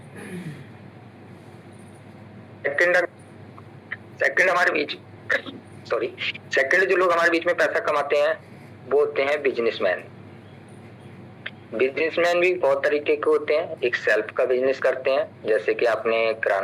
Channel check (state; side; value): identical; both; correlation 1.00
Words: सेकंड हमारे बीच सेकंड जो लोग हमारे बीच में पैसा कमाते हैं वो होते हैं बिजनेसमैन। बिजनेसमैन भी बहुत तरीके के होते हैं। एक सेल्फ का बिजनेस करते हैं, जैसे कि आपने